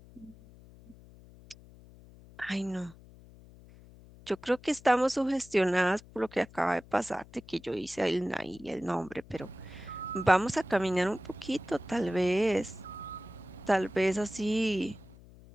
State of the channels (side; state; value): left; noise; hum, 21 dB below the sound